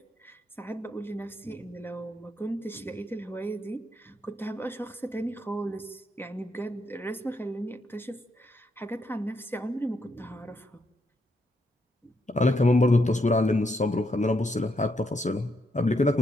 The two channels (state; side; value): normal; both; correlation 0.78